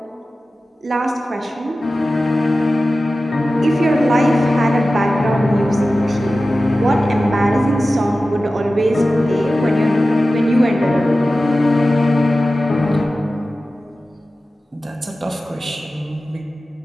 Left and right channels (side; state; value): both; normal; correlation 0.95